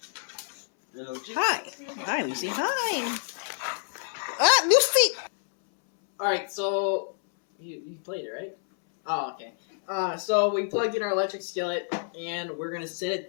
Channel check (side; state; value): right; silent; 59 dB below the other